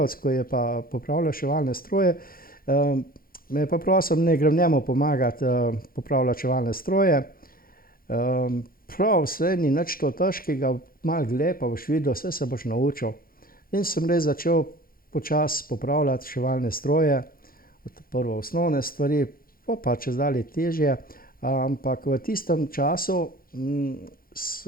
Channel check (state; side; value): late; right; 0.42 ms